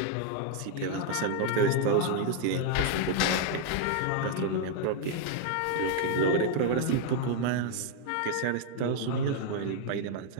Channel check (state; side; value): different; both; correlation 0.00